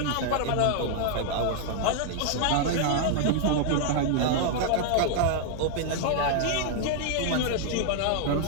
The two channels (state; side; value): different; both; correlation -0.01